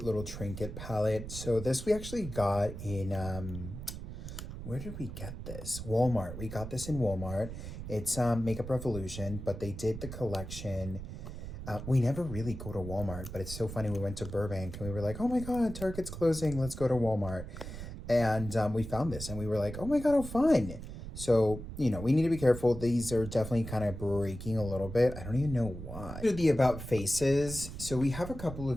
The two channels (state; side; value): noise; right; rumble, 9 dB below the sound